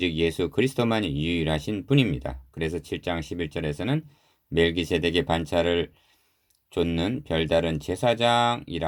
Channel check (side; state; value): both; identical; correlation 1.00